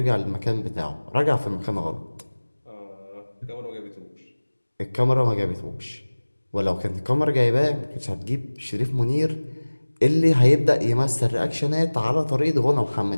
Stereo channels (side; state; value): both; inverted; correlation -1.00